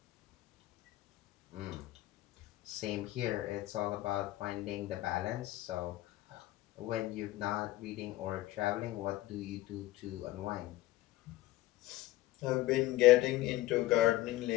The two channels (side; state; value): right; quieter; 16.6 dB